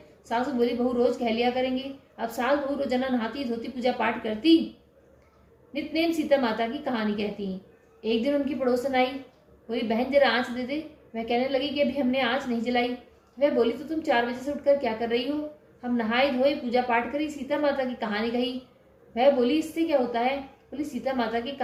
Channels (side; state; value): both; identical; correlation 1.00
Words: सासू बोली बहू रोज कह लिया करेंगे। अब सास बहू रोजाना नहाती धोती पूजा पाठ करती, नितनेम सीता माता की कहानी कहती। एक दिन उनकी पड़ोसन आई, बोली बहन जरा आँच दे दे। वह कहने लगी कि अभी हमने आँच नहीं जलाई। वह बोली तो तुम 4 बजे से उठकर क्या कर रही हो। हम नहाए धोए पूजा पाठ करी, सीता माता की कहानी कही। वह बोली इससे क्या होता है। बोली सीता माता की